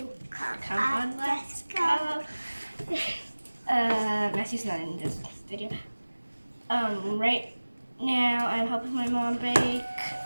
Come on, let's go. Matthew's not in this video. Right now I'm helping my mom bake.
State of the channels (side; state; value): both; inverted; correlation -1.00